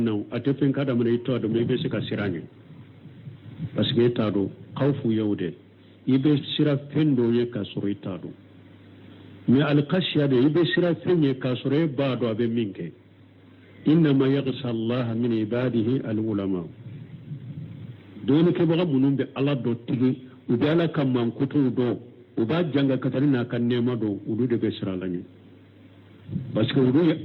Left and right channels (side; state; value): both; identical; correlation 1.00